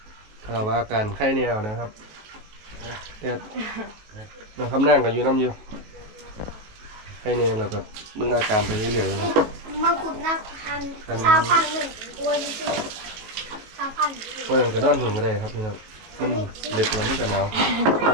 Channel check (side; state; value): left; late; 19 ms